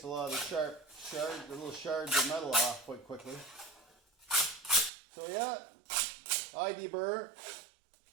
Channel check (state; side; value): drops out; left; at 4.9 s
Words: a lot of the little shards of metal off quite quickly. So yeah, I deburr.